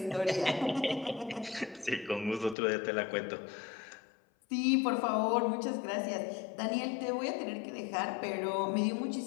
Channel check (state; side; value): drops out; right; at 2.6 s